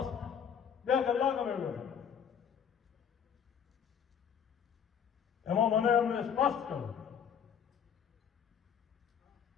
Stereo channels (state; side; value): quieter; right; 7.9 dB